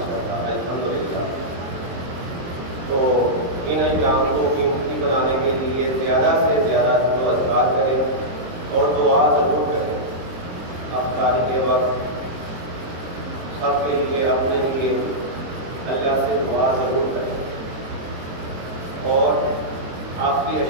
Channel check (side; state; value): left; late; 23 ms